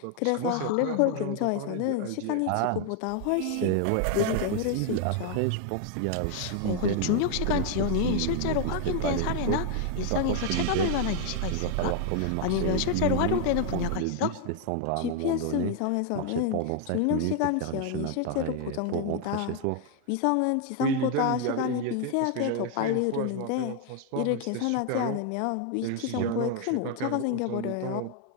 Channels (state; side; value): different; both; correlation 0.00